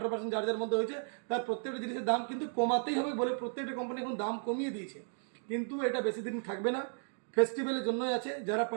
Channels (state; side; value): silent; left; 55 dB below the other